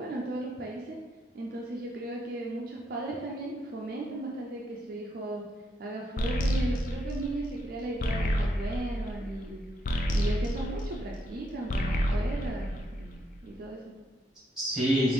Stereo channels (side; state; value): both; normal; correlation 0.77